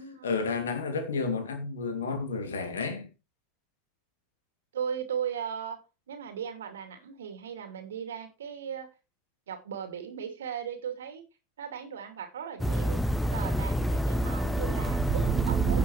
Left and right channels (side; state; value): both; normal; correlation 0.33